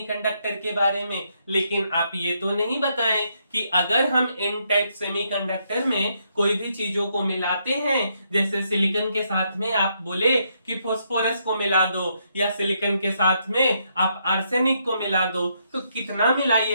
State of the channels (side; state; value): both; inverted; correlation -0.76